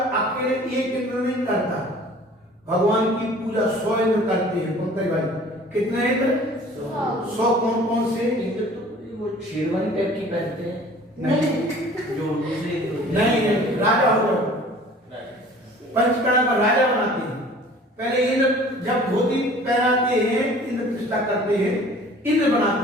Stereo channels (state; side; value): normal; both; correlation 0.48